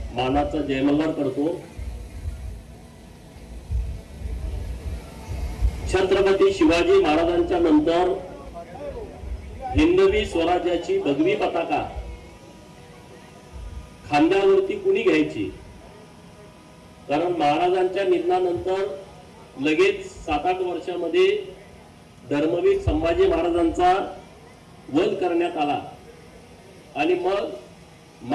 मानाचा जयमल्हार करतो. छत्रपती शिवाजी महाराजांच्या नंतर हिंदवी स्वराज्याची भगवी पताका खांद्यावरती कुणी घ्यायची? कारण महाराजांच्या निधनानंतर लगेच 7-8 वर्षामध्ये धर्मवीर संभाजी महाराजांचा वध करण्यात आला आणि मग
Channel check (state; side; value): identical; both; correlation 1.00